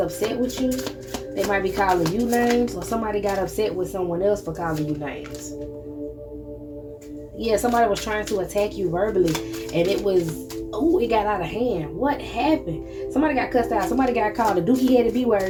with you. They might be calling you names, or somebody got upset with someone else for calling you names. Yeah, somebody was trying to attack you verbally, and it got out of hand. What happened? Somebody got cussed out. Somebody got called a dookie-headed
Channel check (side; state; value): both; identical; correlation 1.00